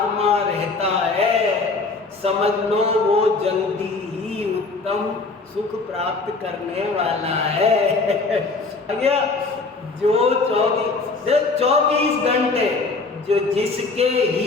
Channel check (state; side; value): quieter; right; 3.9 dB